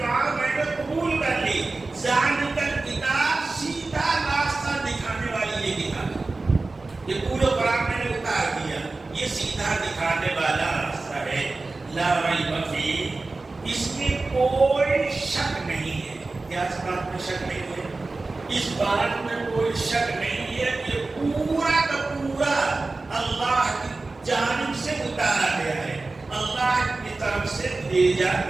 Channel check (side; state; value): left; quieter; 3.5 dB